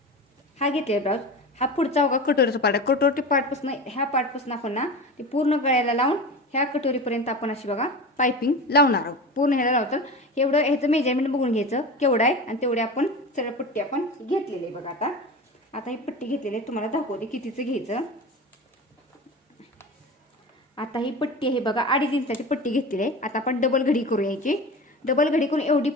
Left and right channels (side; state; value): both; normal; correlation 0.30